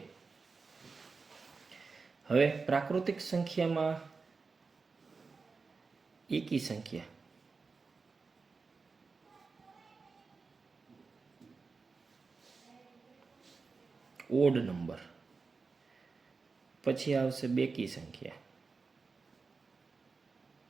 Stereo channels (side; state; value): left; quieter; 4.5 dB